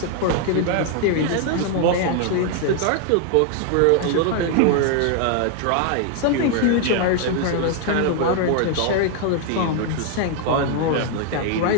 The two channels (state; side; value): different; both; correlation 0.00